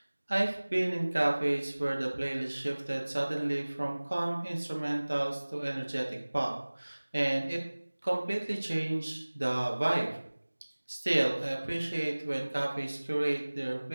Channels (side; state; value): both; inverted; correlation -1.00